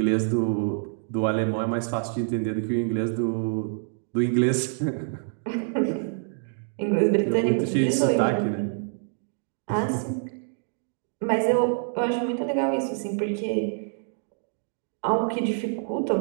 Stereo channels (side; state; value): left; silent; digital silence